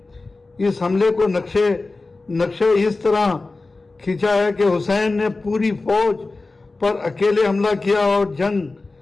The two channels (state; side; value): quieter; right; 3.4 dB